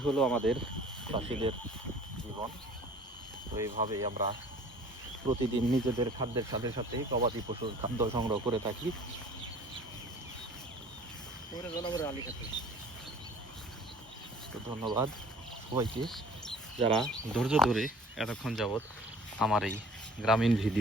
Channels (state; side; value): normal; both; correlation 0.49